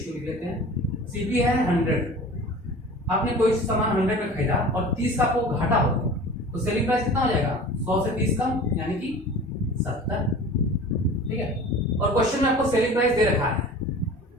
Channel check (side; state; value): both; normal; correlation 0.40